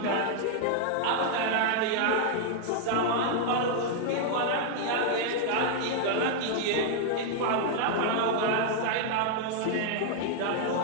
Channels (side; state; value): both; different; correlation 0.00